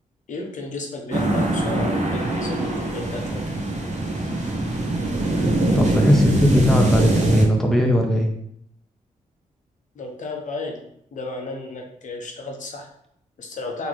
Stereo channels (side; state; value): both; normal; correlation 0.81